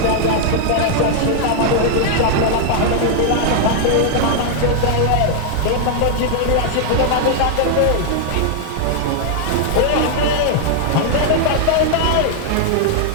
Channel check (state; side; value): different; both; correlation -0.01